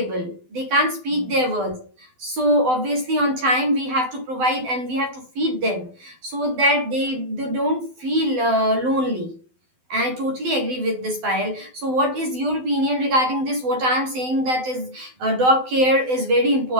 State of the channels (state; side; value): late; left; 12 ms